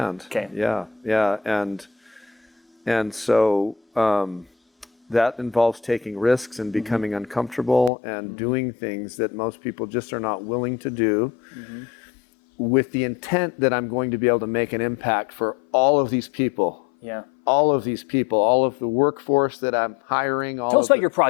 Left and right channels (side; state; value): right; drops out; at 7.9 s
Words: Okay. Yeah. Yeah. And so that involves taking risks and becoming uncomfortable and doing things that most people just are not willing to do, with the intent that I'm going to be able to make an impact for all of these people. Yeah. All of these people, all of the workforce that I'm hiring. Tell us about your